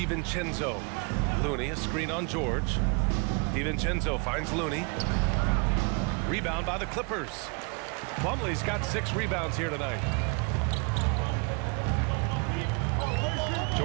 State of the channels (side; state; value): left; quieter; 33.7 dB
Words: Looney, a screen on George. DiVincenzo finds Looney. Rebound by the Clippers. Plumlee's got 6 rebounds here tonight.